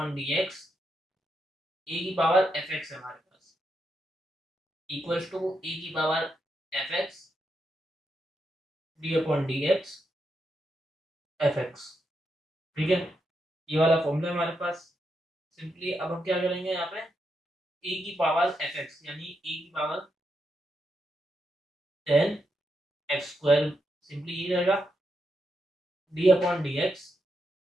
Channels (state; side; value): normal; both; correlation 0.83